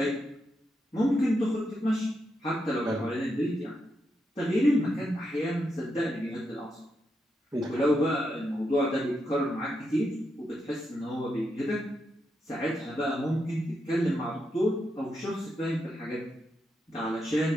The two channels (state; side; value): normal; both; correlation 0.83